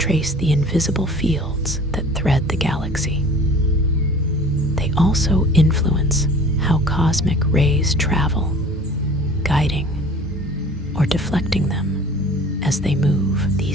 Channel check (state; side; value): normal; both; correlation 0.45